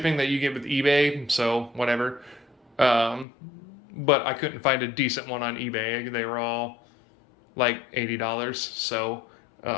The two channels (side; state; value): right; drops out; at 3.2 s